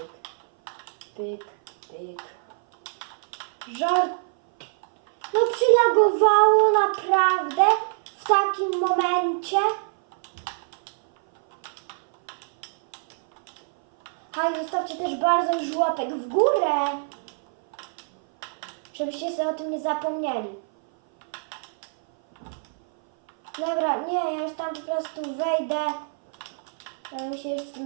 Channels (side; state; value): left; silent; 57 dB below the other